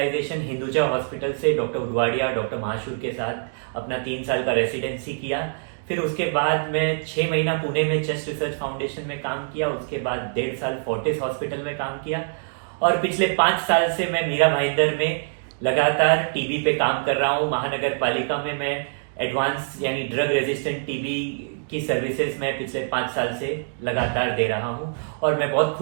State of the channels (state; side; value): silent; left; digital silence